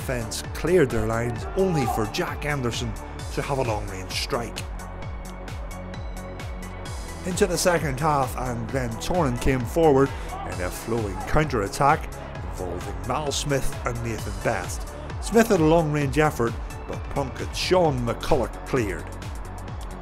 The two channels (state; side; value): identical; both; correlation 1.00